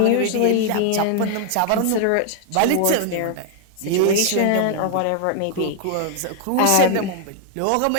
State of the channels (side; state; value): both; different; correlation 0.00